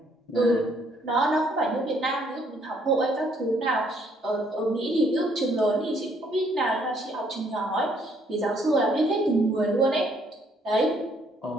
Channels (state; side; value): normal; both; correlation 0.67